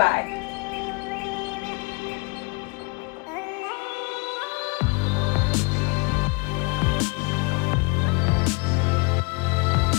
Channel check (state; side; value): quieter; right; 31.0 dB